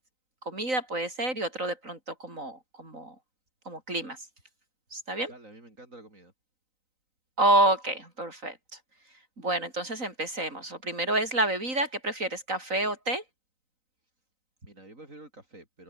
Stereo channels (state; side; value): late; left; 3.9 ms